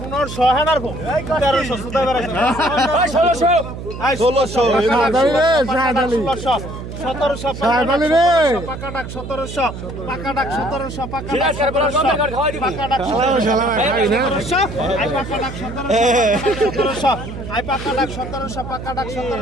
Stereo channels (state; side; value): noise; right; hum, 9 dB below the sound